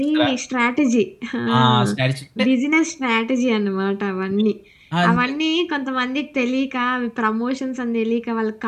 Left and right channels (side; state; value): both; identical; correlation 1.00